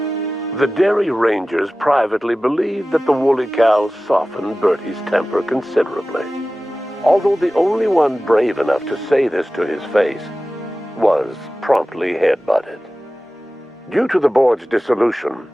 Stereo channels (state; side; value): normal; both; correlation 0.96